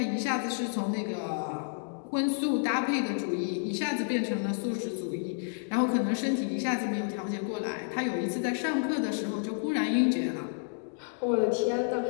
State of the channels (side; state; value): right; silent; digital silence